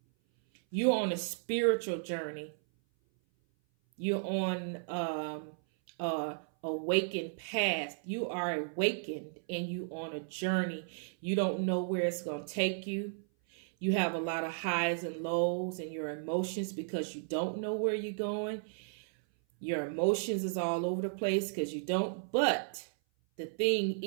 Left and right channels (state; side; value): silent; left; 55 dB below the other